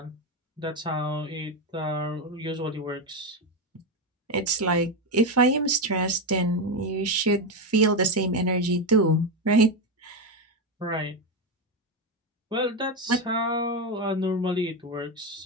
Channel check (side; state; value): both; normal; correlation 0.11